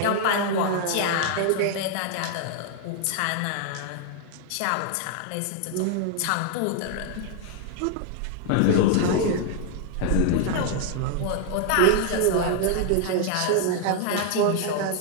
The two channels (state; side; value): different; both; correlation 0.00